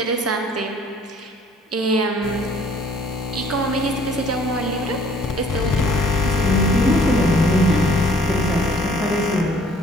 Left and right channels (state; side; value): normal; both; correlation 0.58